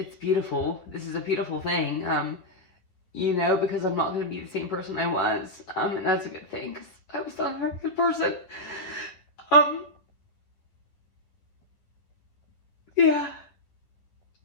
beautiful. This is a beautiful thing, you know, because I'm not going to be the same person I was, and that's a good thing, because I was not a very good person. Um, yeah,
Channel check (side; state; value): right; late; 11 ms